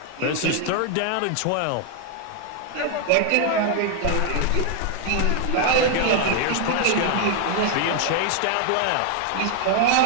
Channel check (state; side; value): different; both; correlation 0.00